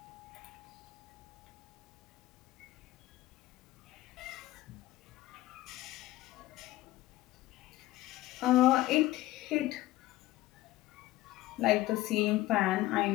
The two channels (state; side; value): quieter; right; 16.8 dB